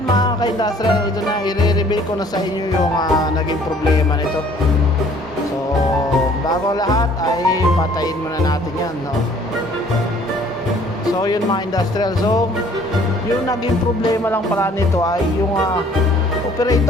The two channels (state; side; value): normal; both; correlation 0.57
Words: mga ka-industrial, ito na, i-reveal ko na sa inyo yung naging problema nito. So bago lahat ay patayin muna natin yan, no? So yun mga industrial, so yung naging problema lang pala nito ay yung